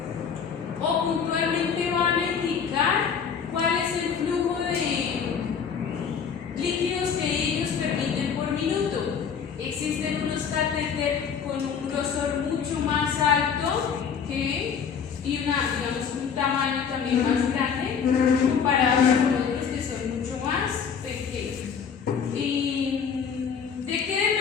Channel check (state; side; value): quieter; right; 6.8 dB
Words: o puntualmente van a indicar cuál es el flujo de líquidos que ellos permiten por minuto. Existen unos catéteres con un grosor mucho más alto y digamos, un tamaño también más grande comparado con otros que son mucho más pequeños. ¿De qué